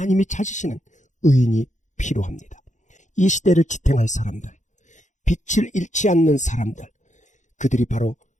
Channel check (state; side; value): late; right; 0.35 ms